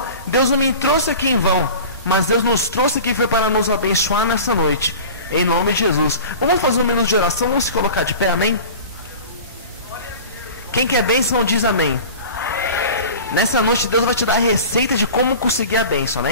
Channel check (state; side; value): inverted; both; correlation -0.38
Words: Deus não me trouxe aqui em vão. Mas Deus nos trouxe aqui foi para nos abençoar nessa noite. Em nome de Jesus. Vamos fazer um minuto de oração. Vamos se colocar de pé, amém? Quem quer bênção diz amém. Nessa noite Deus vai te dar a receita de como conseguir a bênção,